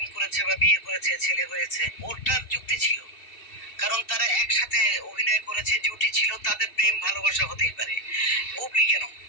করেছে বা বিয়ে করেছে, ছেলে হয়েছে, ওরটার যুক্তি ছিল, কারণ তারা একসাথে অভিনয় করেছে, জুটি ছিল, তাদের প্রেম ভালোবাসা হতেই পারে। বুবলি কেন,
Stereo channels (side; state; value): right; late; 2.7 ms